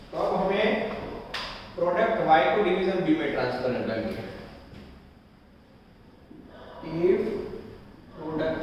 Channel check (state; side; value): identical; both; correlation 1.00